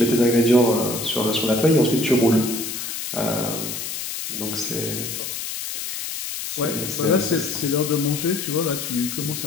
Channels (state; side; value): noise; left; hiss, 5 dB below the sound